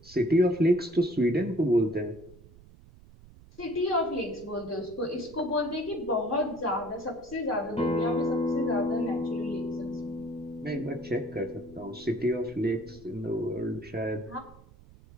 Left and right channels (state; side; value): noise; right; rumble, 22 dB below the sound